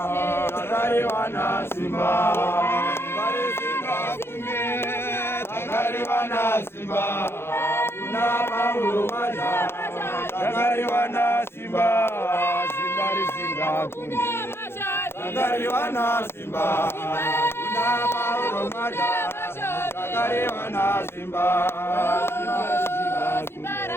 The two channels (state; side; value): late; right; 0.12 ms